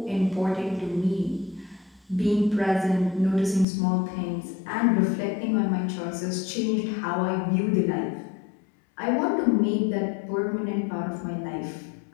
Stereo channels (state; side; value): drops out; right; at 3.7 s